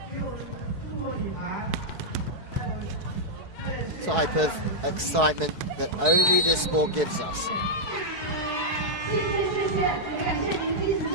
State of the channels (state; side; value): late; left; 4.7 ms